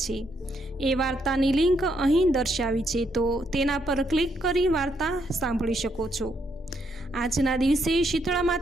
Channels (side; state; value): both; normal; correlation 0.76